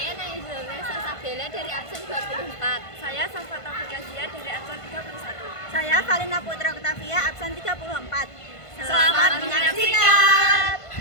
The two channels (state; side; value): late; right; 1.5 ms